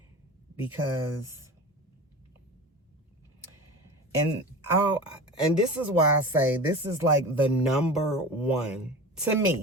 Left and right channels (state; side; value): normal; both; correlation 0.32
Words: because, and this is why I say this is like the number one to